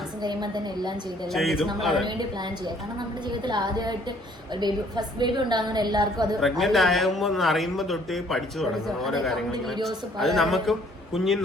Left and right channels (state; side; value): normal; both; correlation 0.61